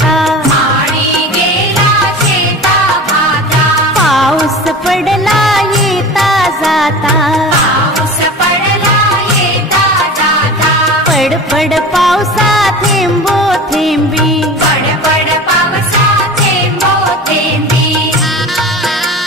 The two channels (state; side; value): normal; both; correlation 0.35